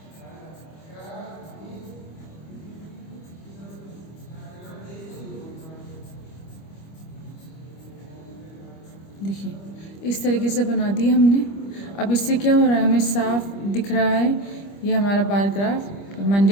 देखिए इस तरीके से बना दी हमने। अब इससे क्या हो रहा है, हमें साफ दिख रहा है ये हमारा bar graph.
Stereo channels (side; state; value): right; late; 25 ms